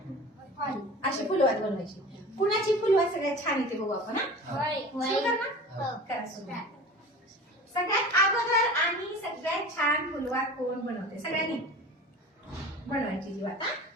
अशी फुलवात बनवायची. कुणाची फुलवात सगळ्यात छान येते बघू आपण. सुरू कर ना. करा सुरू. सगळ्यात अगोदर आणि सगळ्यात छान फुलवात कोण बनवते? सगळ्यांनी बनवायची जी वात.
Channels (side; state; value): both; normal; correlation 0.38